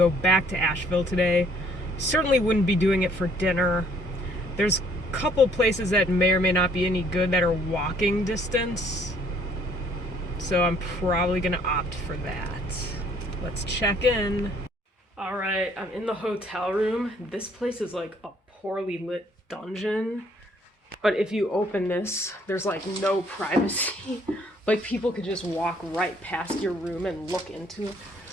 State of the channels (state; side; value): normal; both; correlation 0.62